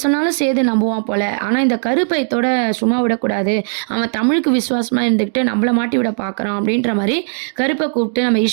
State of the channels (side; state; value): left; silent; 68 dB below the other